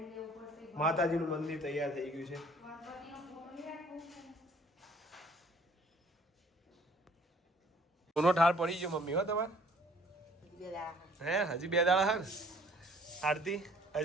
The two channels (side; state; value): both; normal; correlation 0.56